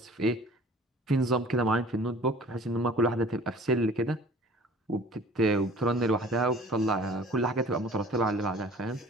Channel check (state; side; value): normal; both; correlation 0.48